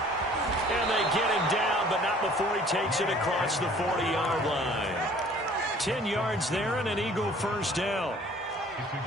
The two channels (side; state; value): both; normal; correlation 0.53